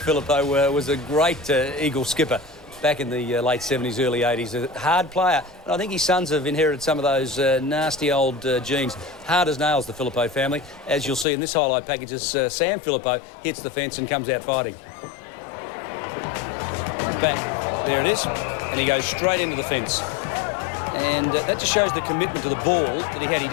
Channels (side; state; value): right; drops out; at 11.2 s